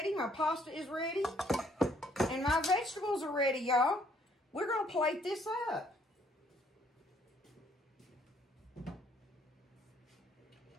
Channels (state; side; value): normal; both; correlation 0.65